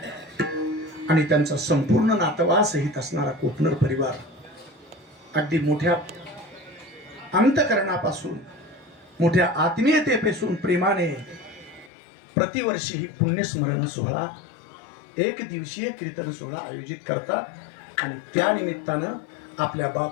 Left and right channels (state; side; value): drops out; right; at 11.9 s